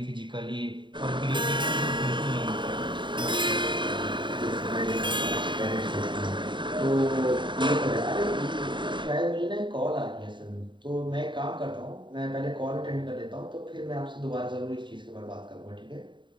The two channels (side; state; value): left; late; 0.23 ms